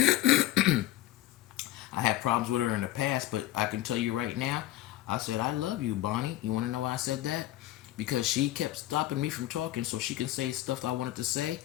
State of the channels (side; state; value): right; quieter; 14.5 dB